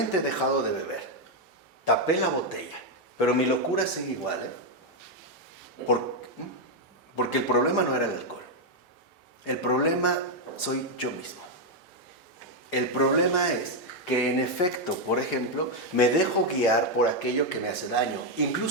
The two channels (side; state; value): both; normal; correlation 0.01